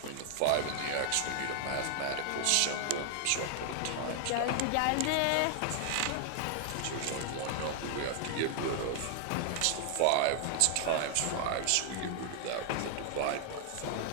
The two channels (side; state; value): both; different; correlation 0.00